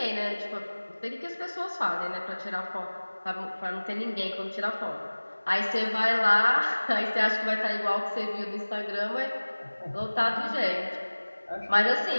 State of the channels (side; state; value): both; inverted; correlation -1.00